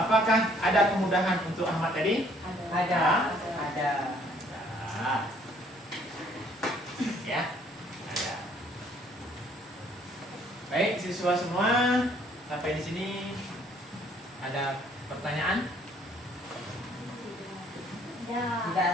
ada kemudahan untuk Ahmad tadi? Ada. Nah, ya, ada. Baik, siswa semua, sampai di sini ada pertanyaan? Tidak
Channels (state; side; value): normal; both; correlation 0.62